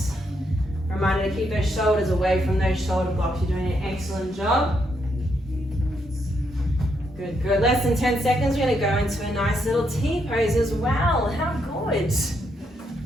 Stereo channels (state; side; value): normal; both; correlation 0.78